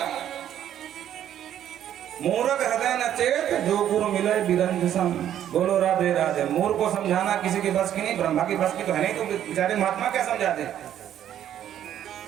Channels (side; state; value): left; quieter; 10.7 dB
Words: मूर्ख हृदय न चेत जो गुरु मिले बिरंज सम। बोलो राधे राधे। मूर्ख को समझाना किसी की बस की नहीं, ब्रह्मा की बस की तो है नहीं, तो बेचारे महात्मा क्या समझाते?